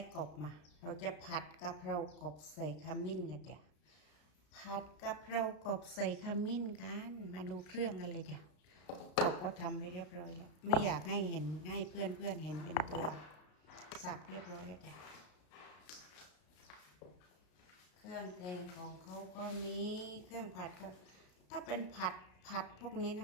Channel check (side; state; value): right; late; 33 ms